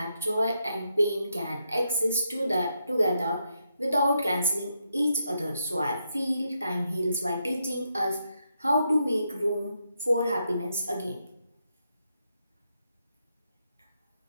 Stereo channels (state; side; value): inverted; both; correlation -0.81